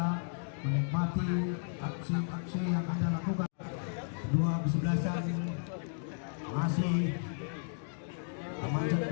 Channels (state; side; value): silent; right; digital silence